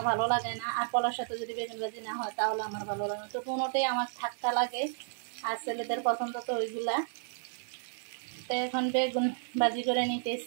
ভালো লাগে না, আর পোলাওর সাথে যদি বেগুন ভাজি না হয় তাহলে আমার ভালো লাগে না। তো কোনোটাই আমার থাকতে লাগে, আর ছেলেদের পছন্দ তো ওইগুলা। তো এখন বেগুন ভাজি করে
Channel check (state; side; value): silent; left; digital silence